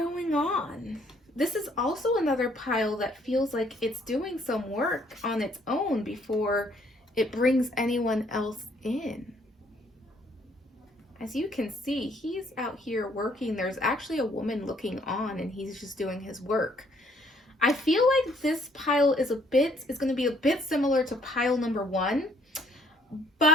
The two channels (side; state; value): both; normal; correlation 0.65